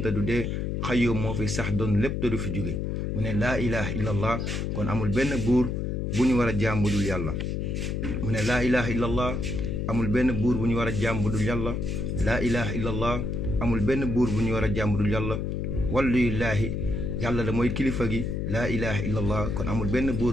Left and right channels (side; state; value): left; noise; hum, 1 dB below the sound